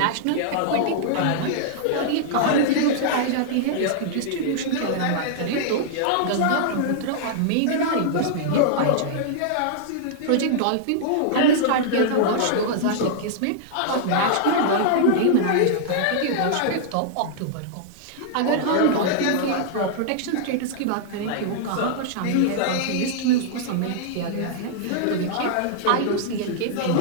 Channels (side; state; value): both; different; correlation -0.01